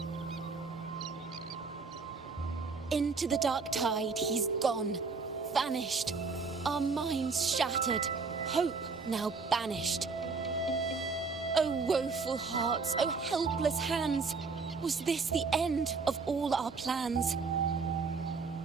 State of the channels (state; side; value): quieter; left; 4.6 dB